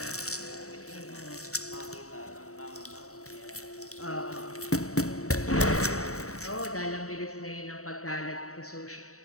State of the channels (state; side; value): late; right; 0.64 ms